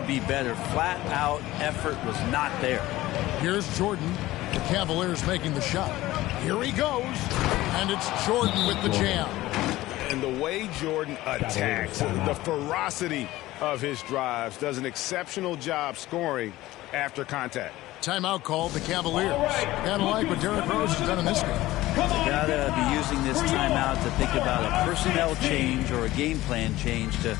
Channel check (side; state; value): right; quieter; 17.0 dB